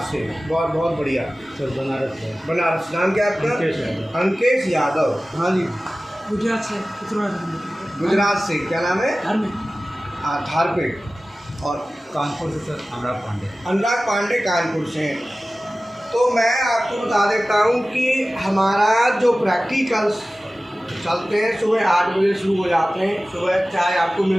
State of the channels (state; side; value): normal; both; correlation 0.96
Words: से। बहुत बहुत बढ़िया सर बनारस से। बनारस। नाम क्या है आपका? अंकेश यादव। हाँ जी। गुजरात से। गुजरात से। क्या नाम है? धारपेट। और कानपुर से सर अनुराग पांडे। अनुराग पांडे कानपुर से। तो मैं आपको बता देता हूँ कि हमारा जो प्रैक्टिकल्स चलते हैं सुबह 8 बजे शुरू हो जाते हैं। सुबह चाय आपको